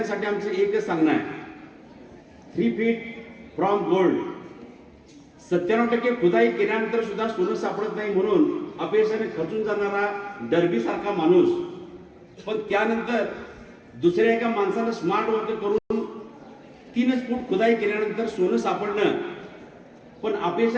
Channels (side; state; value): both; identical; correlation 1.00